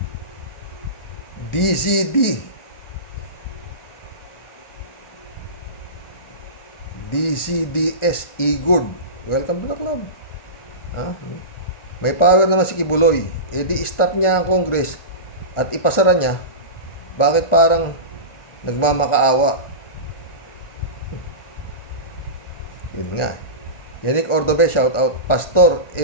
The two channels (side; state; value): right; late; 1.4 ms